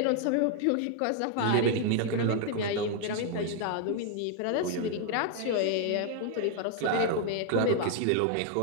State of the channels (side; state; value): both; different; correlation 0.00